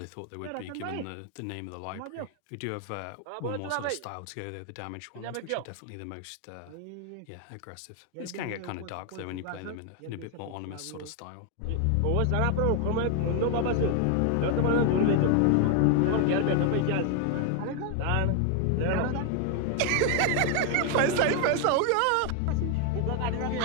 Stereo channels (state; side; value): different; both; correlation 0.01